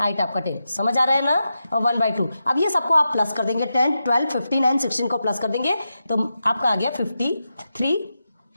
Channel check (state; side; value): inverted; both; correlation -0.89